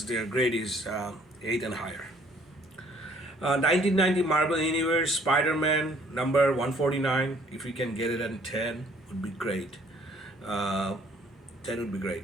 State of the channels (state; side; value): normal; both; correlation 0.60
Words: their grade is 8 and higher. 1990 Marvel Universe Spider-Man number 149. If you can get it at 10, would be great. 10 would be